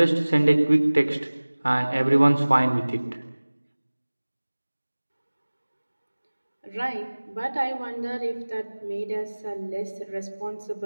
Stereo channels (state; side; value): inverted; both; correlation -1.00